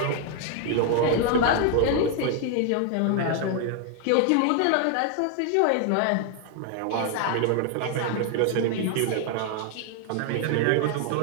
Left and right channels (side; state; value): both; different; correlation 0.00